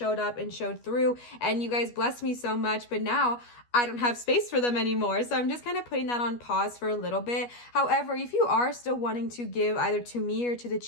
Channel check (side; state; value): right; late; 12 ms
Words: up and showed through, and you guys blessed me so much, but now I don't have space for them anymore. So I'm just kind of putting that on pause for a little bit. However, if you are still wanting to give either to me or to the